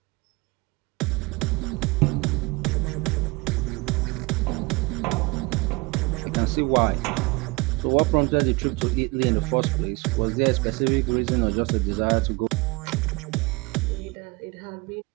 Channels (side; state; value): left; quieter; 25.7 dB